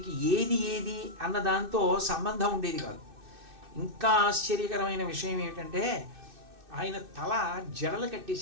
ఏది ఏది అన్న దాంతో సంబంధం ఉండేది కాదు. ఇంకా ఆశ్చర్యకరమైన విషయం ఏమిటంటే ఆయన తల జడలు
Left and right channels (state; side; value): late; left; 2.6 ms